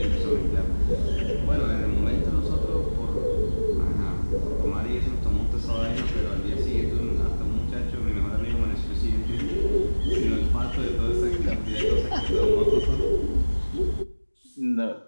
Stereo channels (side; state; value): both; inverted; correlation -1.00